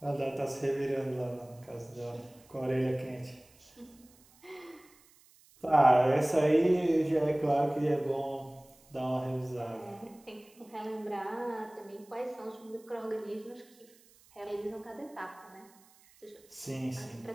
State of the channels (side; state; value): right; noise; hiss, 28 dB below the sound